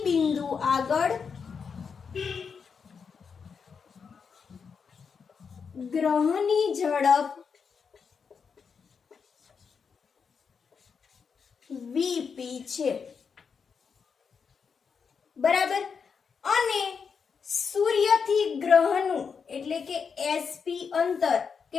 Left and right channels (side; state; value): right; quieter; 6.0 dB